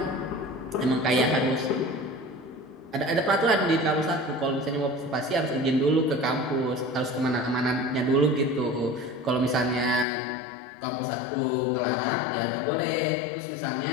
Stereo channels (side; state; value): right; drops out; at 10.1 s